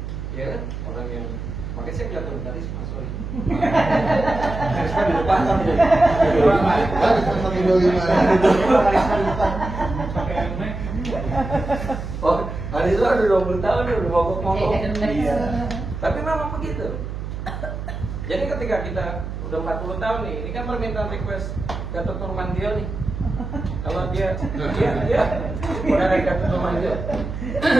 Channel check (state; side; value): noise; right; hum, 7 dB below the sound